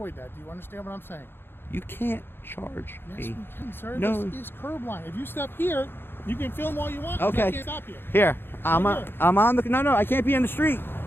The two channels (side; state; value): right; late; 0.10 ms